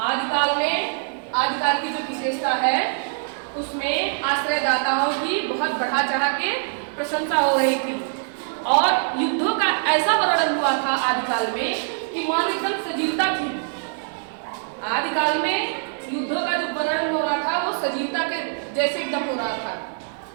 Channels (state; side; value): silent; left; digital silence